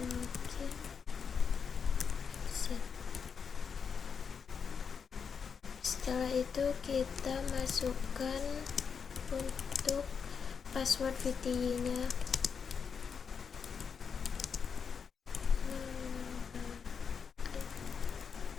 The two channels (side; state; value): right; quieter; 6.3 dB